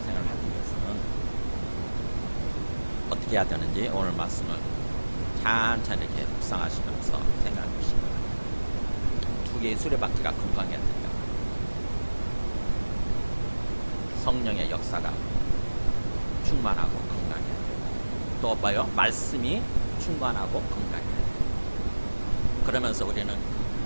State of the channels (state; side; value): inverted; both; correlation -1.00